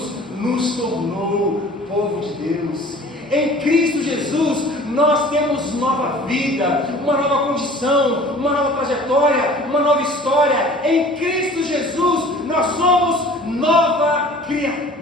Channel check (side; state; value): both; normal; correlation 0.47